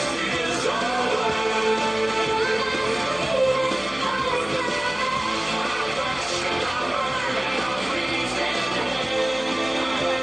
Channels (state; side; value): noise; left; hum, 21 dB below the sound